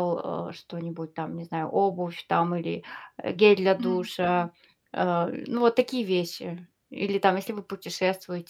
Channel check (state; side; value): identical; both; correlation 1.00